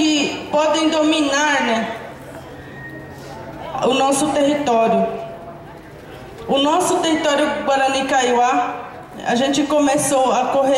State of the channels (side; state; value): both; identical; correlation 1.00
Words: podem dominar, né, o nosso território. O nosso território Guarani Kaiowá, a gente começou a